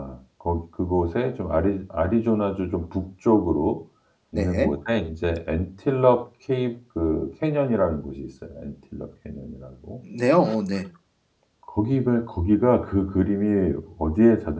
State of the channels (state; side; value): identical; both; correlation 1.00